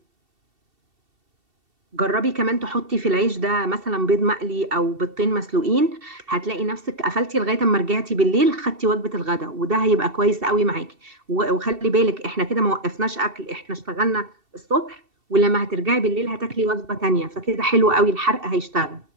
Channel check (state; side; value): late; left; 2.7 ms